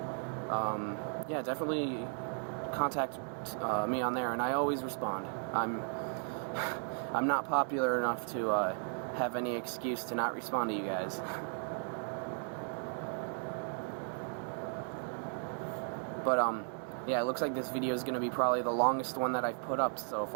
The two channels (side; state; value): left; silent; 54 dB below the other